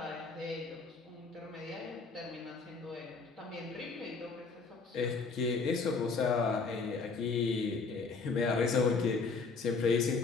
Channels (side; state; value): right; quieter; 4.5 dB